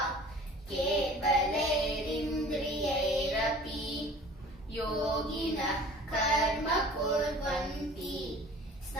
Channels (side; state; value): both; normal; correlation 0.45